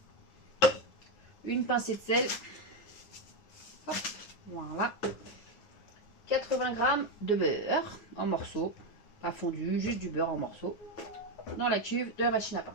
Une pincée de sel. Hop, voilà. 80 g de beurre en morceaux. Pas fondu, juste du beurre en morceaux. Dans la cuve de la machine à pain.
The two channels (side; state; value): right; late; 9.6 ms